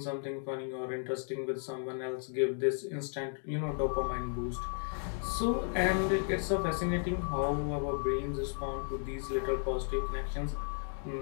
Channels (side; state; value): right; silent; 55 dB below the other